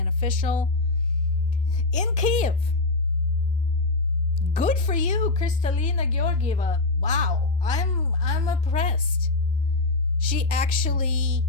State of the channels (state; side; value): quieter; right; 3.2 dB